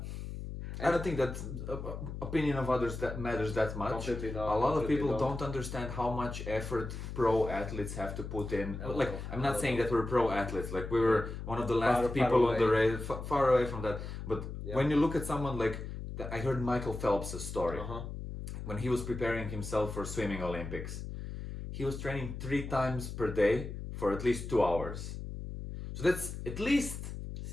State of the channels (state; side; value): noise; left; hum, 7 dB below the sound